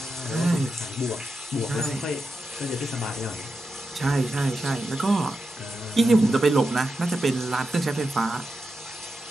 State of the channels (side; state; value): both; normal; correlation 0.89